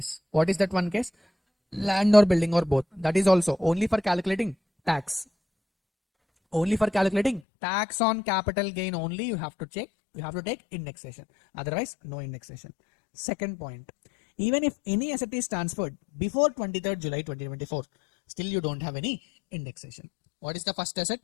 What is that one case? Land or building or both. That is also only for calculating tax. Only for calculating tax on capital gain only you have to check. You have to take indexation. Otherwise, no indexation. Second point. Even if any asset is transferred before 23rd July 2024, still you don't have any indexation. What is the first asset?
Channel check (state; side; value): drops out; right; at 7.4 s